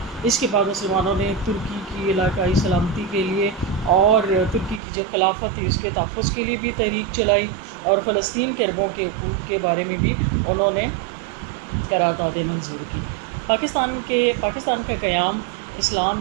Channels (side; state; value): left; drops out; at 4.8 s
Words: اس کے بعد مسلمانوں نے ترکی کی علاقائی سلامتی کے لیے اور ترکی کی جو خلافت تھی اس کے تحفظ کے لیے بھی تحریک چلائی، اور فلسطین کے عربوں کے حقوق کے بارے میں بھی انہوں نے قراردادیں منظور کی۔ پاکستان کا قیام اسلام